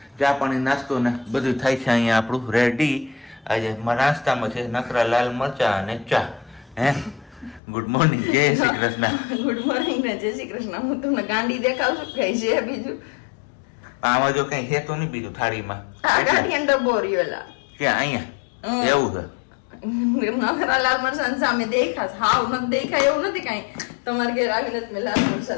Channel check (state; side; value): drops out; right; at 7.6 s